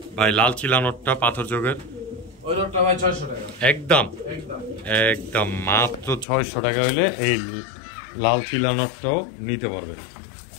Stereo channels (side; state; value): right; drops out; at 6.2 s